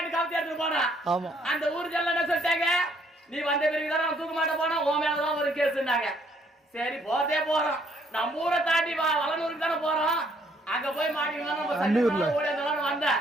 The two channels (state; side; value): normal; both; correlation 0.67